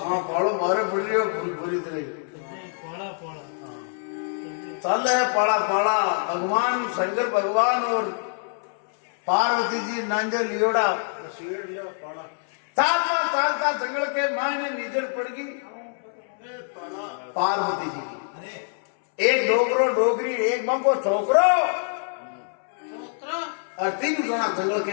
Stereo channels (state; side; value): silent; right; 62 dB below the other